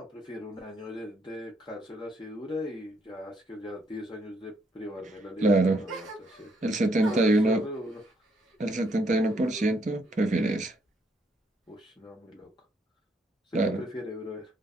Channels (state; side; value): normal; both; correlation 0.72